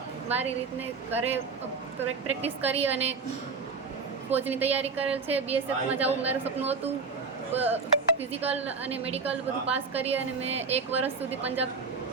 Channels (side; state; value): left; quieter; 4.8 dB